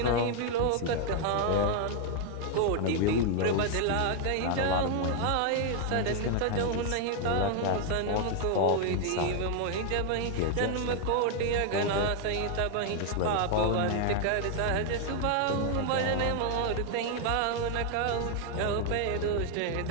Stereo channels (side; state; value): both; different; correlation 0.00